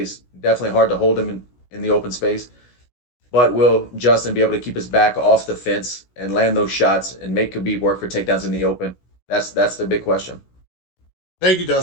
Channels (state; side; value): late; right; 16 ms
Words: Definitely hard to hold him in the open space. But will Justin be able to keep his back off the fence and land those shots and make Khabib work for takedowns in the open? That's the big question. Thank you,